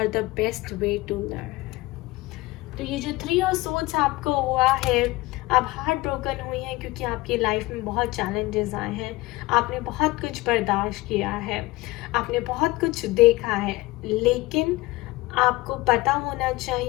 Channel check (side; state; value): right; quieter; 20.2 dB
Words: the best way to learn. तो ये जो 3 ऑफ सोर्ड्स आपको हुआ है, आप हार्ट ब्रोकन हुई हैं क्योंकि आपकी लाइफ में बहुत चैलेंजेस आए हैं, आपने बहुत कुछ बर्दाश्त किया है, आपने बहुत कुछ देखा है, लेकिन आपको पता होना